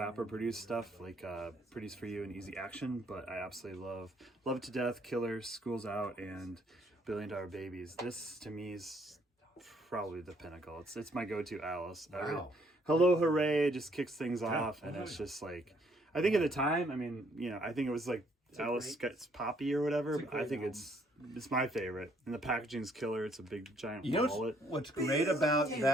produced stuff, like Pretty's For You and Easy Action, but I absolutely love It to Death, Killers, School's Out, and $1 Billion Babies. This, to me, is probably the pinnacle. It's my go-to Alice. Wow. Hello Hooray just kicks things off, and it's just like, I think at the time, I think it was like Alice gets poppy or whatever, but I think it's my favorite. And the packaging's killer. It's a big giant wallet. What's great about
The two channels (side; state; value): both; normal; correlation 0.67